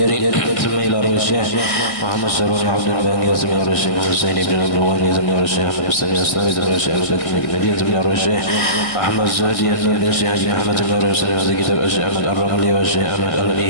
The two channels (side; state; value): right; late; 1.7 ms